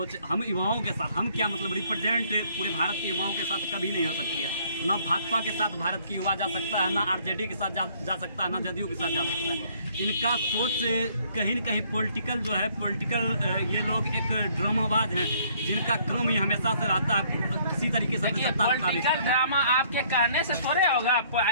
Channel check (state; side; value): inverted; both; correlation -0.62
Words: हम युवाओं के साथ, हम क्या मतलब रिप्रेजेंट पूरे भारत के युवाओं के साथ कभी नहीं हो सकती है। ना भाजपा के साथ भारत की युवा जा सकता है, ना आरजेडी के साथ जा सकता है, ना जदयू के साथ जा सकता है। इनका सोच कहीं न कहीं पॉलिटिकल जो है, पॉलिटिकल ये लोग एक ड्रामाबाज हैं, जिनका काम ही हमेशा से रहता है इसी तरीके से सत्ता का पॉलिटिकल ड्रामा आपके कहने से थोड़े होगा।